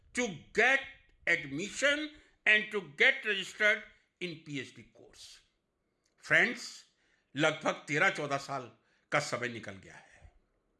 to get admission and to get registered in PhD course. Friends, लगभग 13-14 साल का समय निकल गया है।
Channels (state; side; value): identical; both; correlation 1.00